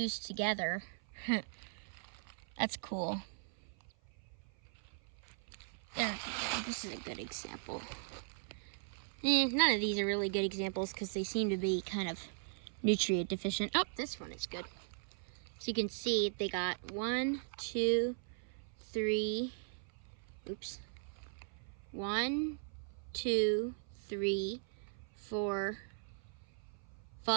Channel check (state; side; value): silent; left; 52 dB below the other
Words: together. That's cool. There, this is a good example. None of these are really good examples because they seem to be kind of nutrient deficient. Oh, this one is good. So you can see they got 1, 2, 3, oops. 1, 2, 3, 4,